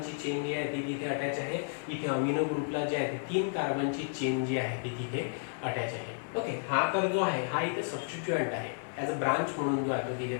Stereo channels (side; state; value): right; silent; 56 dB below the other